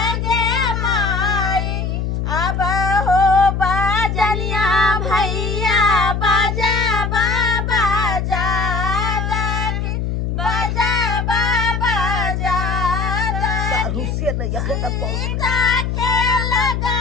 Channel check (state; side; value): noise; left; hum, 1 dB below the sound